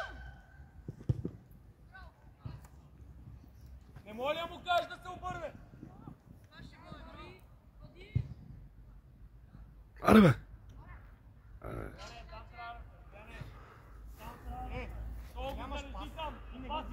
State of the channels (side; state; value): both; identical; correlation 1.00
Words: Не може ли да му кажеш да се обърне? Аре, бе! Нямаш пас и не го